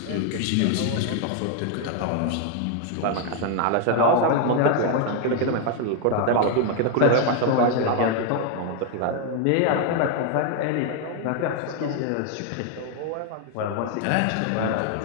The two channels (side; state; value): both; different; correlation 0.01